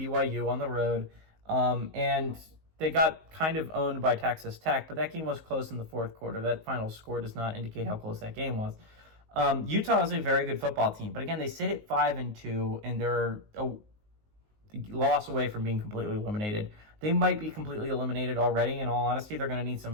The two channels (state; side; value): late; left; 19 ms